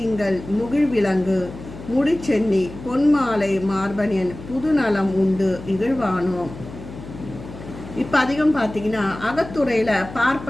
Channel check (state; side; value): noise; left; hum, 14 dB below the sound